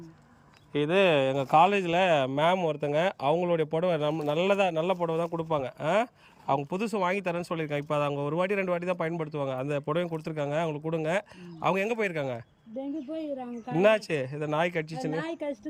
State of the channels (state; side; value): identical; both; correlation 1.00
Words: இது எங்கள் காலேஜில் மேம் ஒருத்தங்க, அவங்களுடைய புடவை நல்ல புடவை தான் கொடுப்பாங்க. அவங்க புதுசு வாங்கி தரேன்னு சொல்லியிருக்காங்க. இப்போ அதை அவங்க ஒரு வாட்டி 2 வாட்டி தான் பயன்படுத்துவாங்க. அந்த புடவையும் கொடுத்துருக்காங்க, அவங்களுக்கு கொடுங்க. அவங்க எங்கே போயிருக்காங்க? என்னாச்சு? இதை நாய் கடிச்சிச்சுன்னு